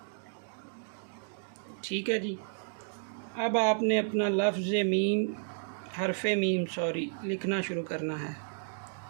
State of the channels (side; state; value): left; silent; digital silence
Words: ठीक है जी। अब आपने अपना लफ्ज़ मीम, हरफ़े मीम लिखना शुरू करना है।